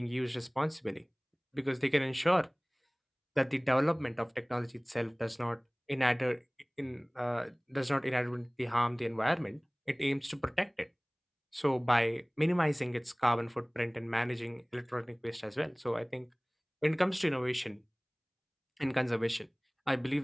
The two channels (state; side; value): identical; both; correlation 1.00